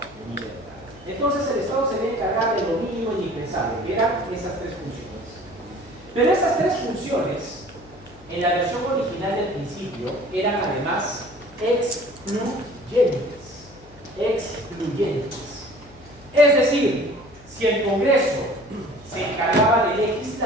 libertad. Entonces el Estado se debe encargar de lo mínimo indispensable, que eran esas tres funciones. Pero esas tres funciones, en la versión original del principio, eran además excluyentes. Excluyentes. Es decir, si el Congreso se encargaba de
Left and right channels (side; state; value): left; noise; hum, 24 dB below the sound